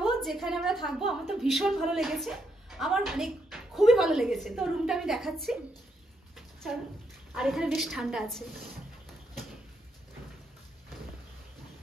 যেখানে আমরা থাকবো। আমার তো ভীষণ ভালো লেগেছে, আমার মানে খুবই ভালো লেগেছে। তো রুমটা আমি দেখাচ্ছি, চলো। আর এখানে বেশ ঠান্ডা আছে,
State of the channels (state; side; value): normal; both; correlation 0.78